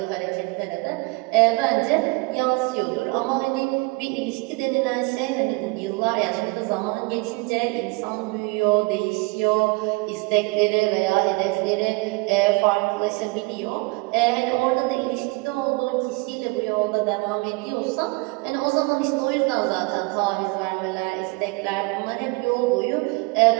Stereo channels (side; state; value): left; quieter; 27.0 dB